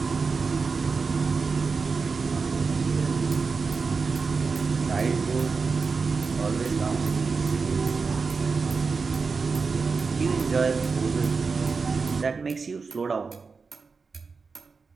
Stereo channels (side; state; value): left; quieter; 4.8 dB